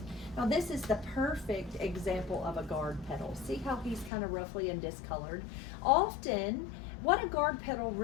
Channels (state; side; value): drops out; right; at 4.1 s